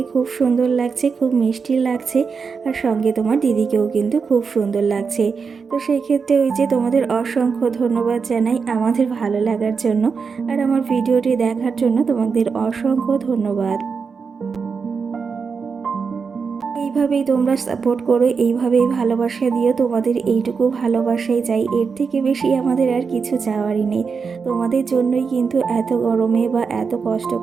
খুব সুন্দর লাগছে, খুব মিষ্টি লাগছে, আর সঙ্গে তোমার দিদিকেও কিন্তু খুব সুন্দর লাগছে। তো সেই ক্ষেত্রে ওই যে তোমাদের অসংখ্য ধন্যবাদ জানাই আমাদের ভালো লাগার জন্য, আর আমার ভিডিওটি দেখার জন্য তোমাদের অসংখ্য ধন্যবাদ। এইভাবেই তোমরা সাপোর্ট করো, এইভাবেই ভালোবাসা দিও, তোমাদের এইটুকু ভালোবাসাই চাই, এর থেকে বেশি আমাদের আর কিছু চাওয়ারই নেই। তোমাদের জন্যই কিন্তু এত গরমে বা এত কষ্ট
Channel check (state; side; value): quieter; left; 5.4 dB